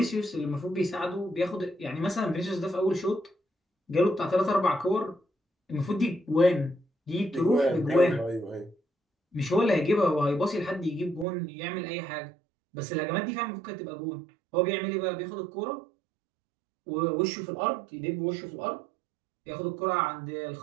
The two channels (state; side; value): drops out; left; at 11.2 s